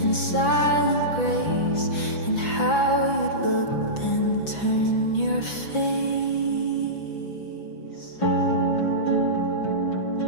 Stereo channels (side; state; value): right; late; 5.9 ms